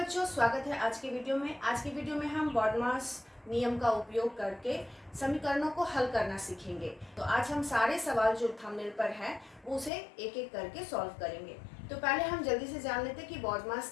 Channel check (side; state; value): right; drops out; at 9.9 s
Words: स्वागत है आज की वीडियो में। आज की वीडियो में हम बॉडमास नियम का उपयोग करके समीकरणों को हल करना सीखेंगे। तो आज हम सारे सवाल जो थंबनेल पर हैं वो उसे एक एक करके सॉल्व करेंगे। तो पहले हम जल्दी से जान लेते हैं कि